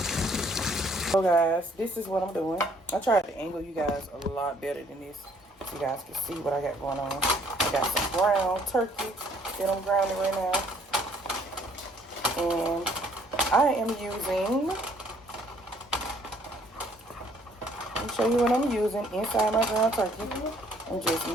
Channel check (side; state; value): both; normal; correlation 0.62